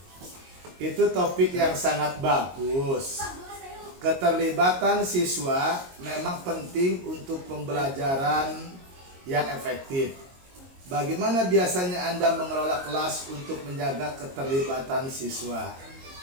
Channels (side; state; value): left; late; 22 ms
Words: Itu topik yang sangat bagus. Keterlibatan siswa memang penting untuk pembelajaran yang efektif. Bagaimana biasanya Anda mengelola kelas untuk menjaga keterlibatan siswa?